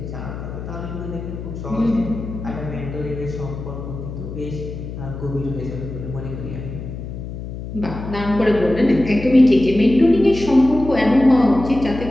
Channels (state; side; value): noise; left; hum, 9 dB below the sound